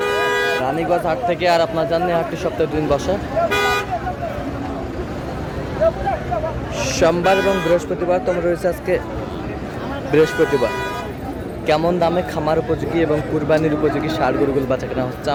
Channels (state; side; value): identical; both; correlation 1.00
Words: রানীগঞ্জ হাট থেকে। আর আপনার জানেন হাটটি সপ্তাহে 2 দিন বসে, সোমবার এবং বৃহস্পতিবার। তোমরা রয়েছে আজকে বৃহস্পতিবার। কেমন দামে খামার উপযোগী এবং কুরবানির উপযোগী ষাঁড় গরুগুলো বাচ্চা কেনা হচ্ছে